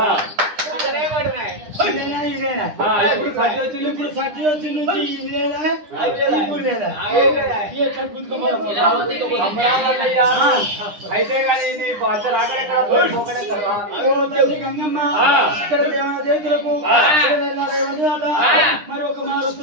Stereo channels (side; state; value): left; late; 9.9 ms